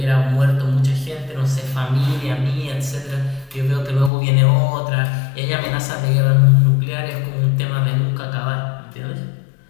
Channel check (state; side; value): drops out; right; at 4.1 s